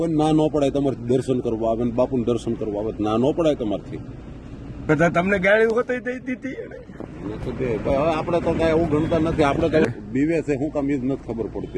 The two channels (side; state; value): both; identical; correlation 1.00